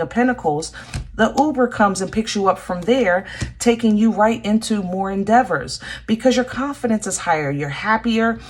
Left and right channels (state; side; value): identical; both; correlation 1.00